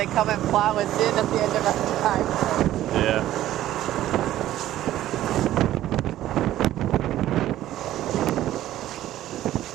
they come and plow us in at the end of our time. Yeah.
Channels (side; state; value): left; quieter; 13.5 dB